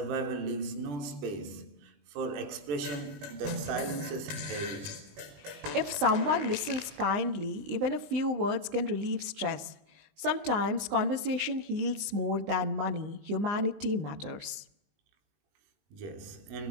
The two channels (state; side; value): late; left; 19 ms